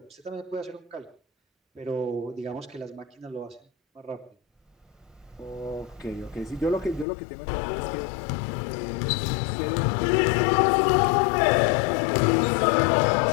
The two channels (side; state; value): right; drops out; at 7.1 s